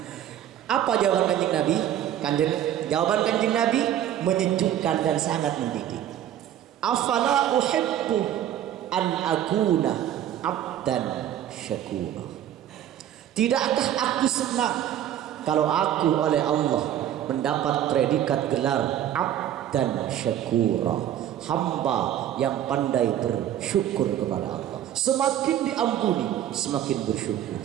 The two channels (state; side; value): quieter; left; 11.1 dB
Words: Apa jawaban Kanjeng Nabi? Jawaban Kanjeng Nabi menyejukkan dan sangat mendidik. Afala uhibbu an akuna abdan syakura. Tidakkah aku senang kalau aku oleh Allah mendapat predikat gelar abdan syakura, hamba yang pandai bersyukur kepada Allah. Semakin diampuni, semakin bersyukur.